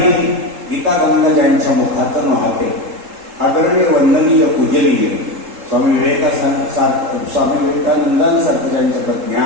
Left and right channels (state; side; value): late; left; 3.7 ms